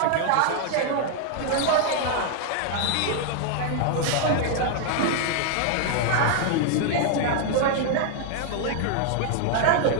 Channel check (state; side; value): different; both; correlation 0.00